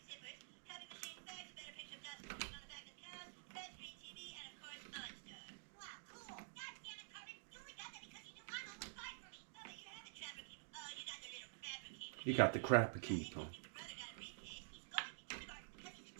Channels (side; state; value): left; silent; digital silence